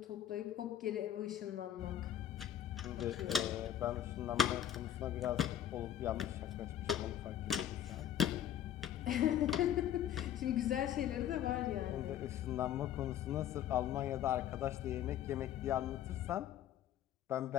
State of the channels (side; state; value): right; quieter; 10.8 dB